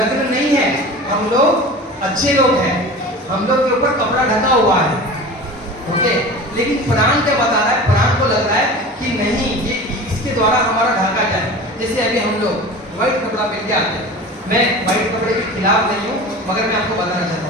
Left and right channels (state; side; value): normal; both; correlation 0.35